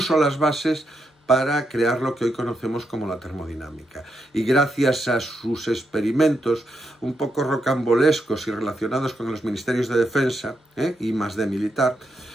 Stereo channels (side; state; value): both; normal; correlation 0.82